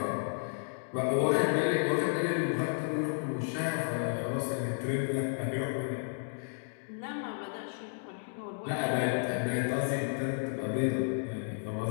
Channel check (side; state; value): right; silent; digital silence